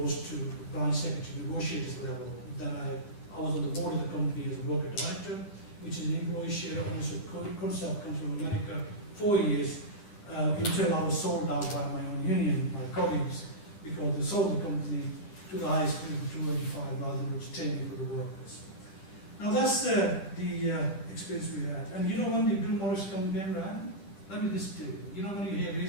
to branch secretary negotiators level. Then I was on the board of the company as a worker director, which is an employee share ownership concept, comes from America, 4 years. Until I was sold out by my own union, my colleagues, because they sold the company to the highest bid of 285 rather than retaining for the workers. Now that's the experience we had. And when the Bill Morris campaign ran, let me just tell you, when you hear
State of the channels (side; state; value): right; late; 10 ms